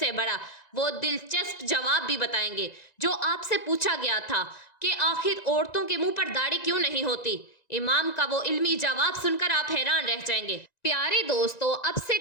बड़ा वो दिलचस्प जवाब भी बताएंगे जो आपसे पूछा गया था कि आखिर औरतों के मुंह पर दाढ़ी क्यों नहीं होती। इमाम का वो इल्मी जवाब सुनकर आप हैरान रह जाएंगे। प्यारे दोस्तों, अब से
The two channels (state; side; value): late; right; 1.9 ms